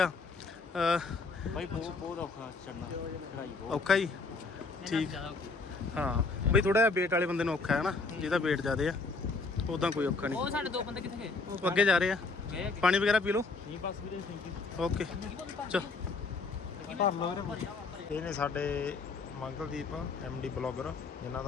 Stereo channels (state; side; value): quieter; right; 4.0 dB